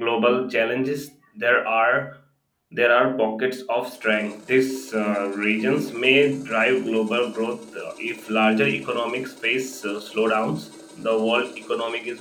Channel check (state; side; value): identical; both; correlation 1.00